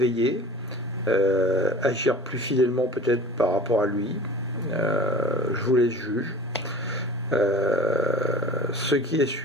agir plus fidèlement peut-être par rapport à lui. Je vous laisse juger. Ce qui est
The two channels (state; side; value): normal; both; correlation 0.41